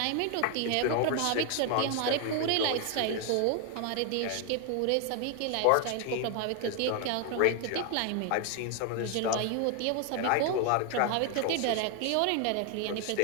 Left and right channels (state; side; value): different; both; correlation 0.01